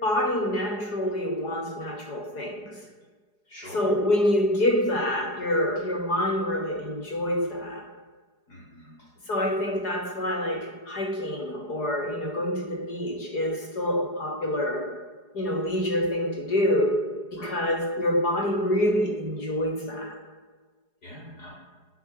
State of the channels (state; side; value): late; right; 4.8 ms